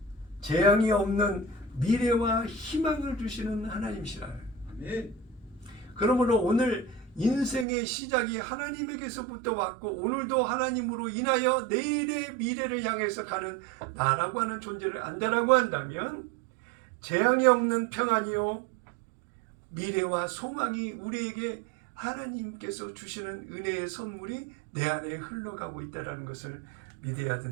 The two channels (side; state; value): left; drops out; at 7.7 s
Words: 재앙이 없는 미래와 희망을 주시는 하나님이시라. 아멘. 그러므로 오늘 인생의 시작이 하나님에게서부터 왔고 오늘도 하나님으로 인하여 내일의 미래를 향해서 가는 나라고 하는 존재를 안다라고 한다면 재앙이 없는 평안이요 미래와 소망이 우리에게 하나님께서 주시는 은혜의 선물이 내 안에 흘러가고 있다는 것을 믿어야